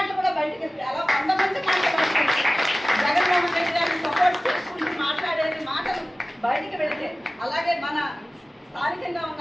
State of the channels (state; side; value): normal; both; correlation 0.97